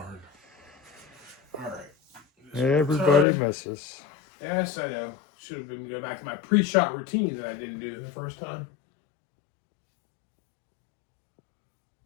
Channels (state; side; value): drops out; right; at 3.2 s